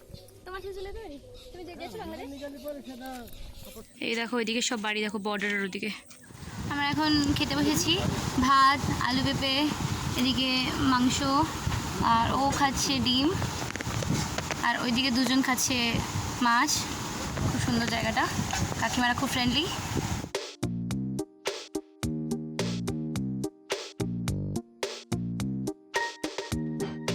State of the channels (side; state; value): both; identical; correlation 1.00